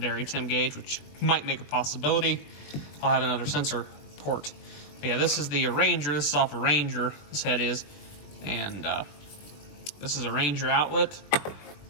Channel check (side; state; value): right; late; 21 ms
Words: temp gauge, which might make a possibility. I'll have another sensor port. But yeah, this is the Ranger. This is off a Ranger, this head is. And this is a Ranger outlet.